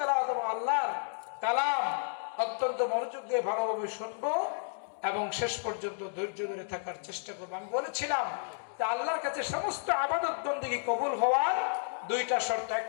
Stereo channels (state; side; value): silent; right; digital silence